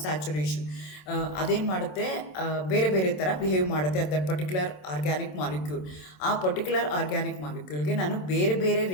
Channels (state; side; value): late; right; 27 ms